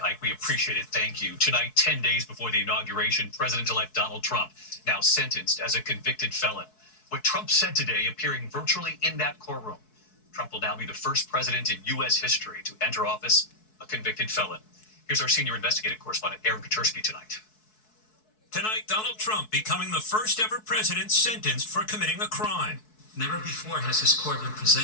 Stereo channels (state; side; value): late; right; 4.6 ms